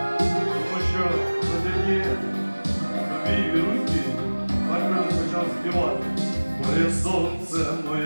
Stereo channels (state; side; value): inverted; both; correlation -1.00